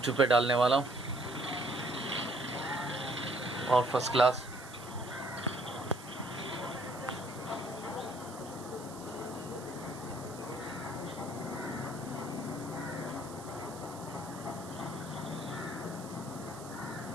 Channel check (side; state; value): right; noise; hiss, 16 dB below the sound